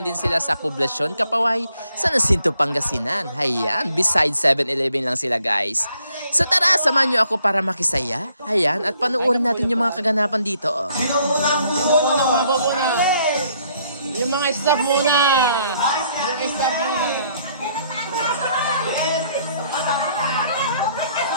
din sila sa Poblacion, Kapaway, sa Nacinto, Pangasinan. Hayan, beside 7-Eleven lang sila guys. So tara, samahan nyo ako para makisaya. Hayan, at panuorin natin yung mga kaganapan dito. Sino unang muna? Yung mga staff muna. Yung staff muna.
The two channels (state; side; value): inverted; both; correlation -0.67